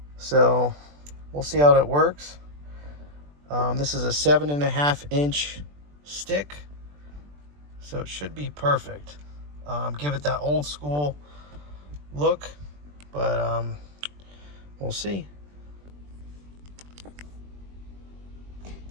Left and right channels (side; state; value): left; late; 20 ms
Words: So we'll see how that works. This is a 7.5-inch stick. So it should be perfect. Give it that old school look, but we'll see.